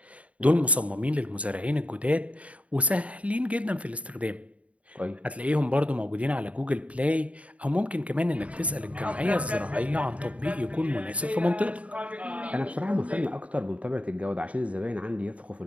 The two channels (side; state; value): left; late; 0.066 ms